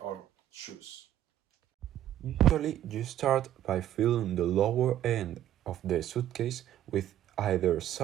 our shoes. Usually, you start by filling the lower end of the suitcase with either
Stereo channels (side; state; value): left; quieter; 11.9 dB